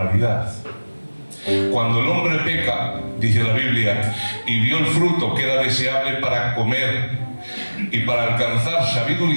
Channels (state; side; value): inverted; both; correlation -1.00